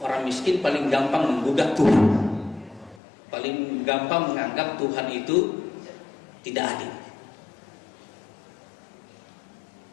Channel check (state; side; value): drops out; right; at 3.0 s